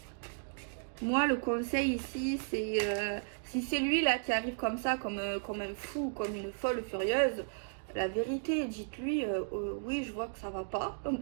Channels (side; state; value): left; silent; digital silence